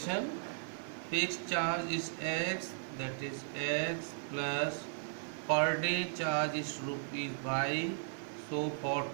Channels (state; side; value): silent; left; digital silence